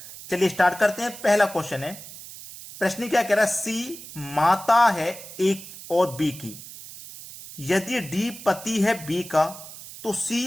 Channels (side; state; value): right; noise; hiss, 14 dB below the sound